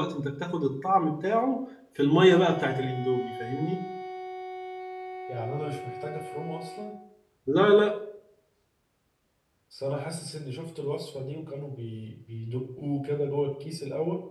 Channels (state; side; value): identical; both; correlation 1.00